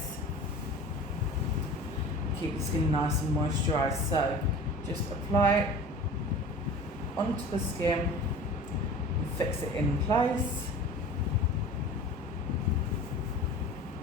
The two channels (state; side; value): normal; both; correlation 0.39